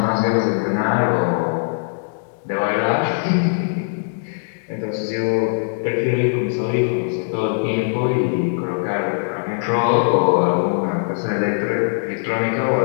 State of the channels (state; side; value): silent; right; digital silence